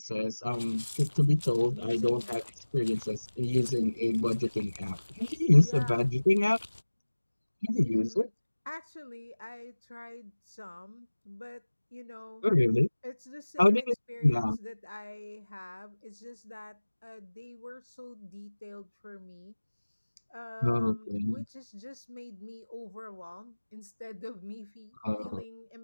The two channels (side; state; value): both; inverted; correlation -1.00